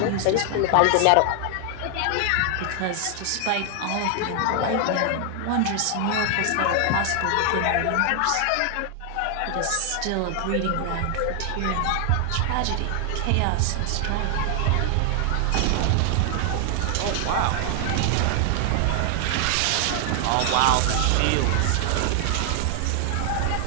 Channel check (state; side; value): different; both; correlation 0.00